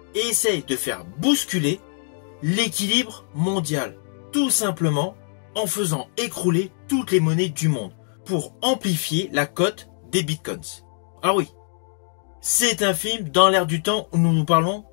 et essaye de faire bousculer l'équilibre mondial, tout simplement en faisant écrouler toutes les monnaies du monde pour amplifier la cote des bitcoins. Alors oui, c'est un film dans l'ère du temps où nous parlons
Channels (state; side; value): silent; right; digital silence